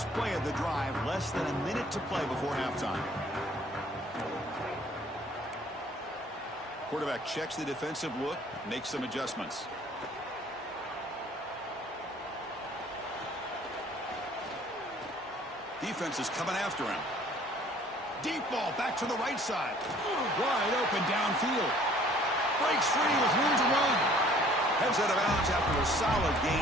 play of the drive, less than a minute to play before halftime. Quarterback checks the defensive look, makes some adjustments. Defense is coming after him. Deep ball back to the right side. Wide open downfield. Breaks free with room to run. Heads out of bounds after a solid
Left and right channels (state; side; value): normal; both; correlation 0.55